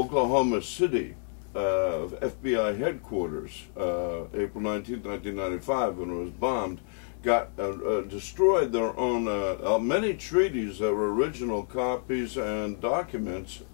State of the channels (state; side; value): silent; right; 59 dB below the other